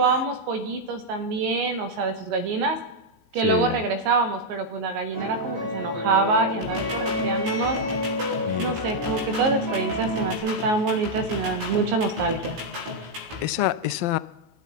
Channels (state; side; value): late; left; 16 ms